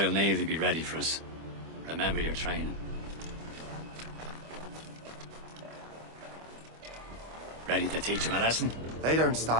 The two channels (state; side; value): late; left; 25 ms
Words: Navy be ready for us. Remember your training. Ready to teach him a lesson? They don't